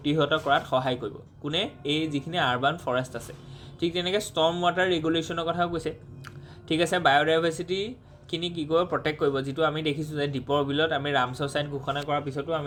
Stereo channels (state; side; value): identical; both; correlation 1.00